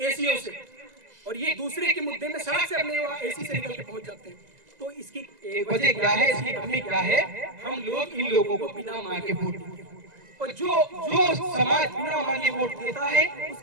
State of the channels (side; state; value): left; late; 1.9 ms